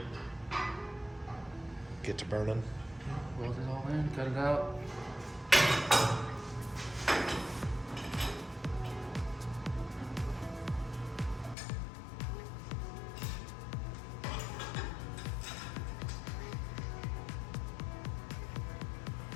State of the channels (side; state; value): right; drops out; at 11.6 s